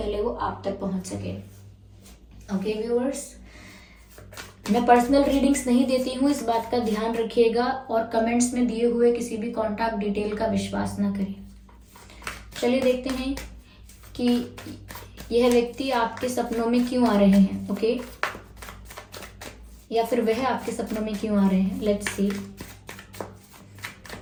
वो आप तक पहुँच सके। ओके व्यूअर्स, मैं पर्सनल रीडिंग्स नहीं देती हूँ, इस बात का ध्यान रखिएगा, और कमेंट्स में दिए हुए किसी भी कॉन्टैक्ट डिटेल का विश्वास ना करें। चलिए देखते हैं कि यह व्यक्ति आपके सपनों में क्यों आ रहे हैं। ओके, या फिर वह आपके सपनों में क्यों आ रहे हैं। लेट्स सी,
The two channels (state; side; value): identical; both; correlation 1.00